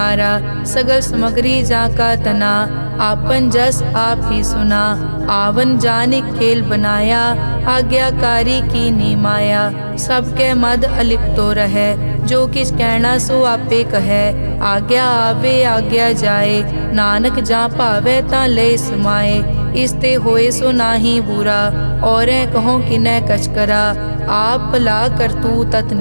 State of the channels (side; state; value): both; inverted; correlation -1.00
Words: सगल समग्री जाका तना, आपन जस आप ही सुना। आवन जान खेल बनाया, आज्ञाकारी की नी माया। सबके मद अलिप्तो रहे, जो किस कहना सो आपे कहे। आज्ञा आवे आज्ञा जाए, नानक जा भावे ता ले समाए। इसते होए सो नाही बुरा, औरें कहो किनै कछ करा। आप भला करतू